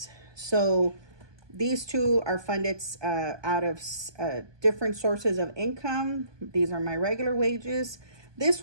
So these two are funded out of different sources of income. These are my regular wages. This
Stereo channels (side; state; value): left; late; 1.2 ms